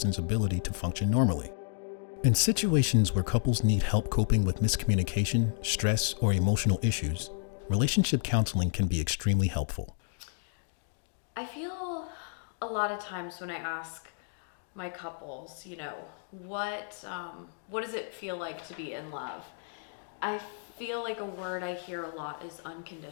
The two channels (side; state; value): right; silent; digital silence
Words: ability to function normally. In situations where couples need help coping with miscommunication, stress, or emotional issues, relationship counseling can be extremely helpful. I feel a lot of times when I ask my couples, what does it feel like to be in love? I feel like a word I hear a lot is